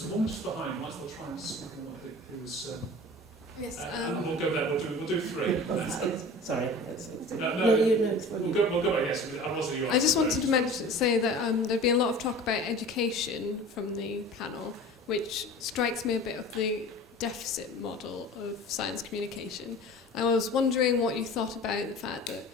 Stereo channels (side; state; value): both; normal; correlation 0.40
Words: a woman just behind. Might as well try and speak on what I think it was. Yes. And we'll go there. We'll do 3. Sorry. We'll go back. Yes, I just wanted to say that there'd been a lot of talk about education from the panel, which strikes me a bit of the deficit model of science communication. I was wondering what you thought about the fact that